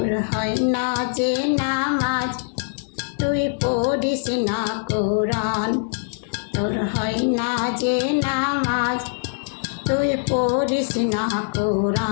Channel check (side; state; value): right; silent; digital silence